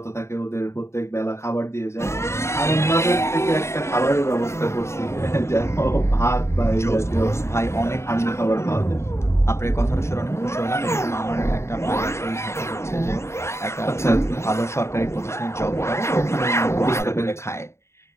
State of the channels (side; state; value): right; late; 0.13 ms